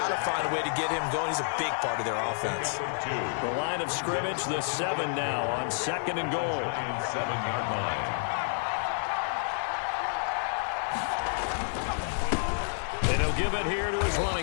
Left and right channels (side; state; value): right; silent; digital silence